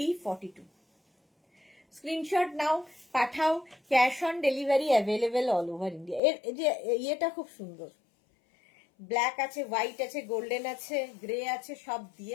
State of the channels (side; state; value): right; drops out; at 6.2 s